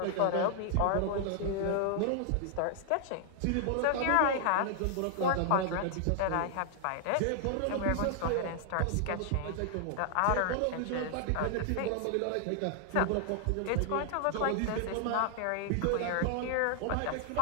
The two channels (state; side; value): different; both; correlation 0.00